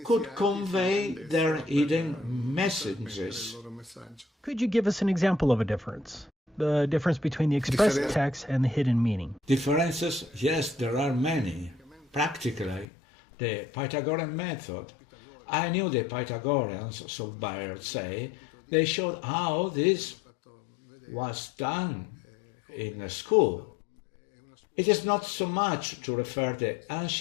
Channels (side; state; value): right; drops out; at 12.9 s